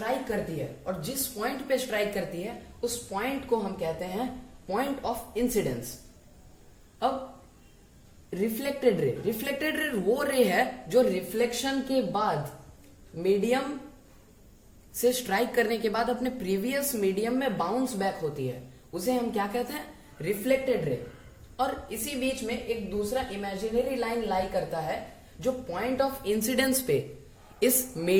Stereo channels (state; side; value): identical; both; correlation 1.00